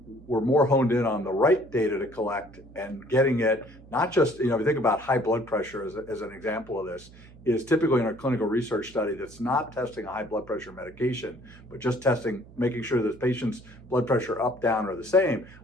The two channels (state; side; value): noise; right; hum, 21 dB below the sound